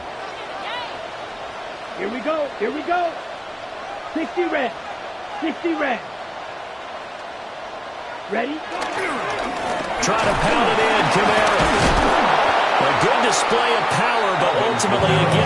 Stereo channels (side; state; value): both; identical; correlation 1.00